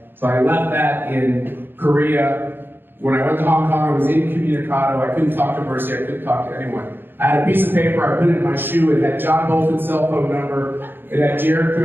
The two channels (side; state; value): left; late; 0.099 ms